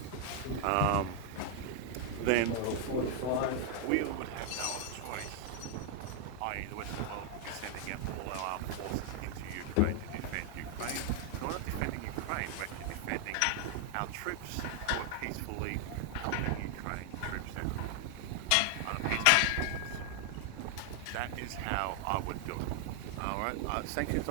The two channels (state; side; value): different; both; correlation 0.00